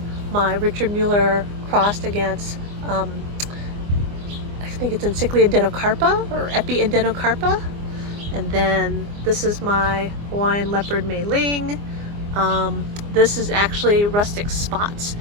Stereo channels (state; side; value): late; left; 24 ms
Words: my Richard Mueller crossed against I think it's Encyclia denocarpa or Epi denocarpa, and then this is my Hawaiian leopard Mei Ling. This is actually rustic spots,